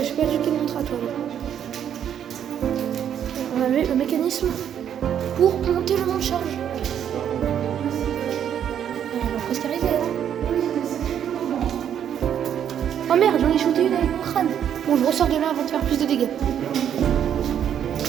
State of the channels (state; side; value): quieter; left; 9.3 dB